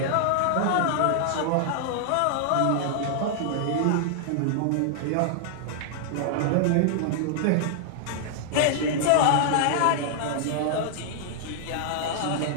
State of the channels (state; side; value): different; both; correlation -0.01